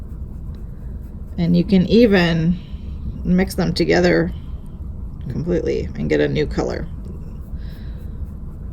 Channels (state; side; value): identical; both; correlation 1.00